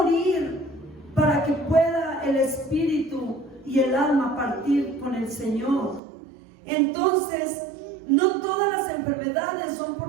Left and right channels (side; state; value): left; drops out; at 6.0 s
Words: para que pueda el espíritu y el alma partir con el Señor. Entonces, no todas las enfermedades son